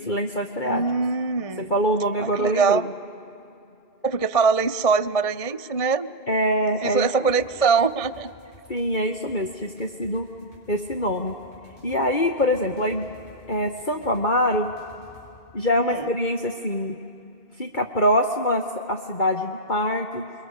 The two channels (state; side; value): late; right; 2.3 ms